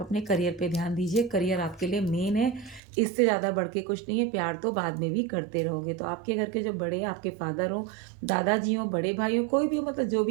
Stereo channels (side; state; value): left; drops out; at 2.8 s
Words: अपने करियर पे ध्यान दीजिए, करियर आपके लिए मेन है, इससे ज़्यादा बढ़ के कुछ नहीं है, प्यार तो बाद में भी करते रहोगे। तो आपके घर के जो बड़े हैं, आपके फादर हों, दादाजी हों, बड़े भाई हों, कोई भी हो, मतलब जो